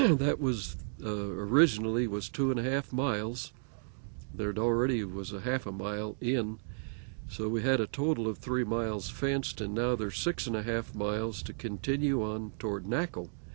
was originally was 2.5 miles, there already was a half a mile in, so we had a total of 3 miles fenced, and now there's 6.5 miles to continue on toward Naco,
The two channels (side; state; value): left; silent; digital silence